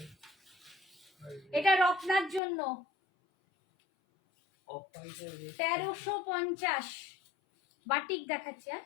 এটা রত্নার জন্য অফ হোয়াইটের 1350 বাটিক দেখাচ্ছি। হ্যাঁ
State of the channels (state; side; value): drops out; right; at 2.4 s